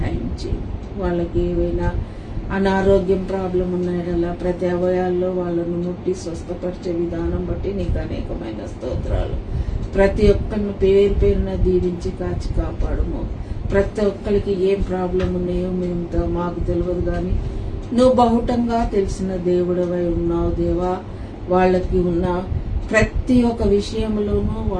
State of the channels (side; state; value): both; identical; correlation 1.00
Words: చేయి. వాళ్ళకి ఏవైనా అనారోగ్యం ప్రాబ్లం ఉన్నాయడలా ప్రతి అవయాల్లో వాళ్ళను ముట్టి స్వస్థపరిచే విధానం బట్టి నీకు అనేకమైన స్తోత్రాలు. ప్రతి ఒక్కరిని పేరు పేరున దీవించి కాచి కాపాడుము. ప్రతి ఒక్కరికి ఏం ప్రాబ్లం ఉన్నాయో మేము మాకు తెలియదు, కానీ నువ్వు బహుటంగా తెలిసిన దేవుడవై ఉన్నావు దేవా. వాళ్ళకి ఉన్న ప్రతి ఒక్క విషయంలోనూ